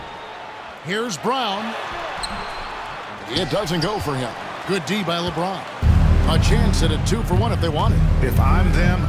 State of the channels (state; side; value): identical; both; correlation 1.00